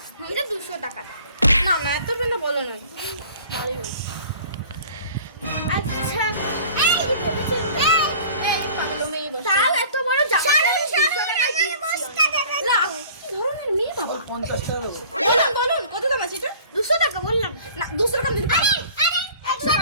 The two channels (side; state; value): both; inverted; correlation -0.47